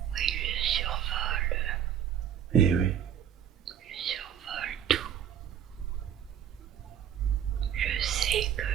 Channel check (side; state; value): left; quieter; 9.6 dB